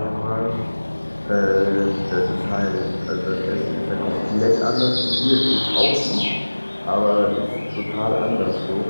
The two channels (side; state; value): both; inverted; correlation -1.00